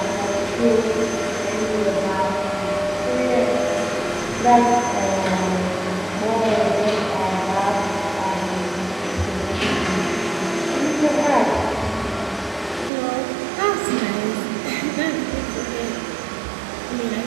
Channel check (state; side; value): drops out; left; at 12.9 s